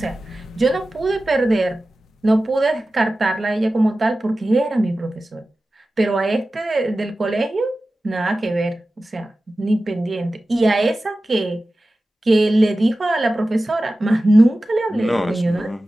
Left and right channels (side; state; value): both; normal; correlation 0.95